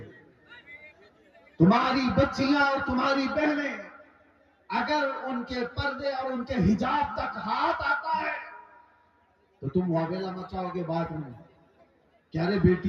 تمہاری بچیاں اور تمہاری بہنیں اگر ان کے پردے اور ان کے حجاب تک ہاتھ آتا ہے تو تم واویلا مچاؤ گے بعد میں کہ ارے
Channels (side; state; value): both; identical; correlation 1.00